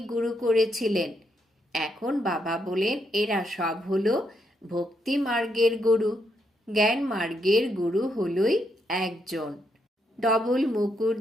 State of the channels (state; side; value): normal; both; correlation 0.78